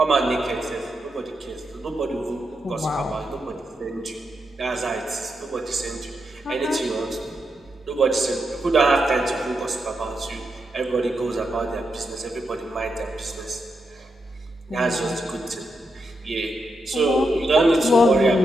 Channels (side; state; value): both; normal; correlation 0.84